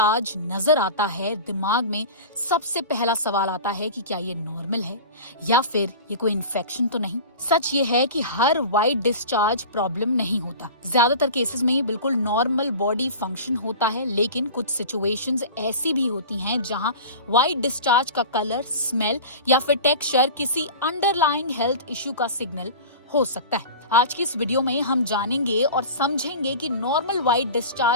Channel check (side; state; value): both; inverted; correlation -0.35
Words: नजर आता है, दिमाग में सबसे पहला सवाल आता है कि क्या ये नॉर्मल है या फिर ये कोई इन्फेक्शन तो नहीं। सच ये है कि हर व्हाइट डिस्चार्ज प्रॉब्लम नहीं होता। ज्यादातर केसेस में ये बिल्कुल नॉर्मल बॉडी फंक्शन होता है, लेकिन कुछ सिचुएशंस ऐसी भी होती हैं जहां व्हाइट डिस्चार्ज का कलर, स्मेल या फिर टेक्सचर किसी अंडरलाइंग हेल्थ इश्यू का सिग्नल हो सकता है। आज की इस वीडियो में हम जानेंगे और समझेंगे कि नॉर्मल व्हाइट